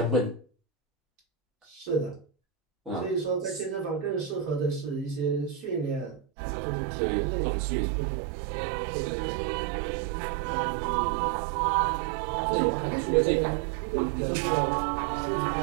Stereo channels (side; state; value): left; drops out; at 6.2 s